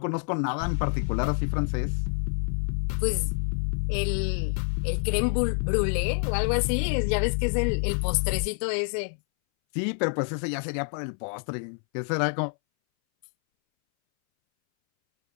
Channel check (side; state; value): right; silent; 60 dB below the other